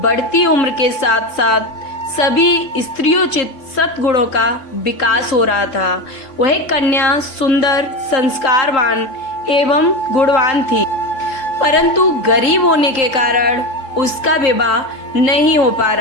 बढ़ती उम्र के साथ साथ सभी स्त्रियोचित सद्गुणों का विकास हो रहा था। वह कन्या सुंदर, संस्कारवान एवं गुणवान थी, परंतु गरीब होने के कारण उसका विवाह नहीं हो पा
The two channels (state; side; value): late; right; 3.8 ms